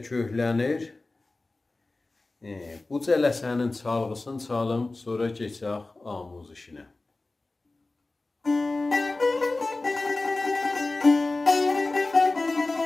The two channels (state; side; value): quieter; right; 3.2 dB